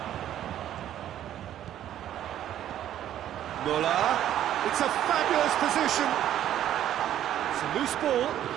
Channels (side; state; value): left; quieter; 11.5 dB